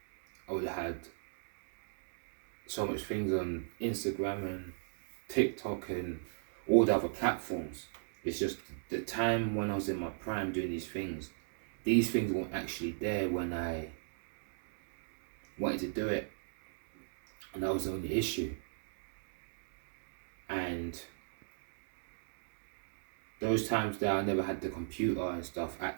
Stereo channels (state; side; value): silent; left; digital silence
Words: I would have had so much things on Instagram and TikTok and all the other platforms. It's just the time when I was in my prime doing these things weren't actually there when I wanted to do it, and that was the only issue. And those times that I never had the computer and stuff at